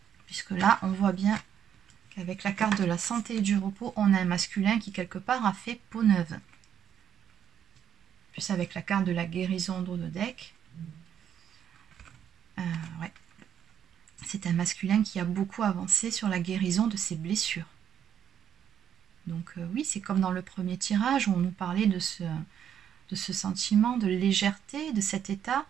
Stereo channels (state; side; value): quieter; left; 9.2 dB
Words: Puisque là, on voit bien qu'avec la carte de la santé et du repos, on a un masculin qui quelque part a fait peau neuve. Plus avec la carte de la guérison en dos de deck. Ouais. C'est un masculin qui a beaucoup avancé sur la guérison de ses blessures. Donc oui, c'est comme dans le premier tirage où on nous parlait de ce sentiment de légèreté, de cet état.